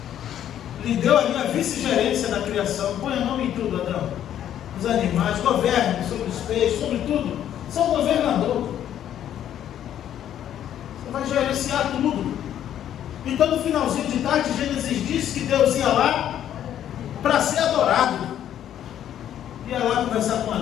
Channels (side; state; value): right; quieter; 10.7 dB